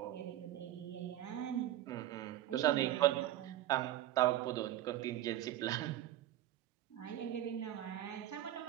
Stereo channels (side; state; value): left; quieter; 13.3 dB